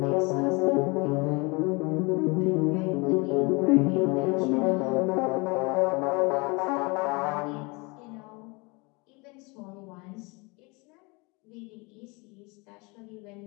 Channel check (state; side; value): quieter; right; 27.8 dB